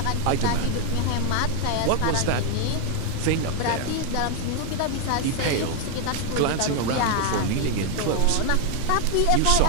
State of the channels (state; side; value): different; both; correlation 0.01